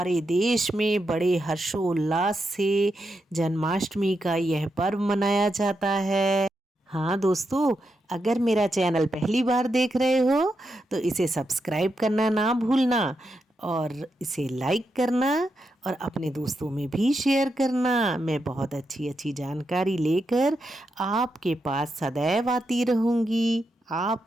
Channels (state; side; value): normal; both; correlation 0.85